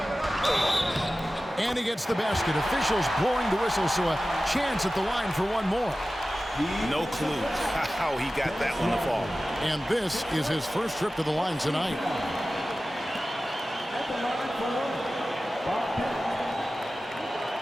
And he gets the basket. Officials blowing the whistle, so a chance at the line for one more. No clue how he got that one to fall. And this is his first trip to the line tonight.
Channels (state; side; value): normal; both; correlation 0.95